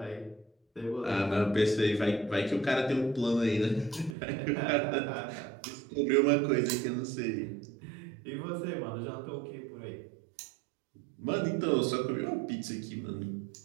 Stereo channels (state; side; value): drops out; left; at 4.2 s